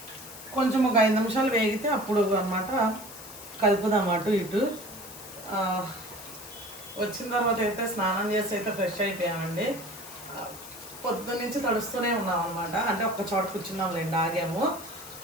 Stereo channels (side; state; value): left; noise; hiss, 15 dB below the sound